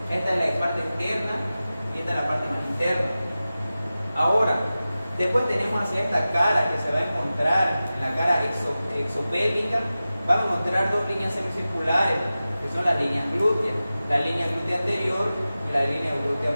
Esta es la parte externa y esta es la parte más interna. Ahora, después tenemos hacia esta cara que se va a encontrar, en la cara exopélvica, vamos a encontrar 2 líneas semicirculares, que son las líneas glúteas, la línea glútea anterior y la línea glútea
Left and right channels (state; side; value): inverted; both; correlation -0.95